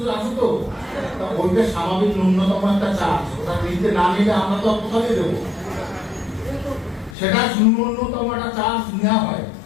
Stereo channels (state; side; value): drops out; right; at 7.2 s